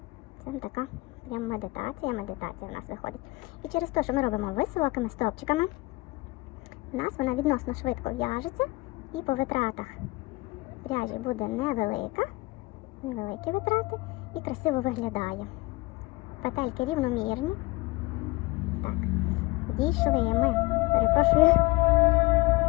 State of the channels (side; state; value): right; quieter; 22.6 dB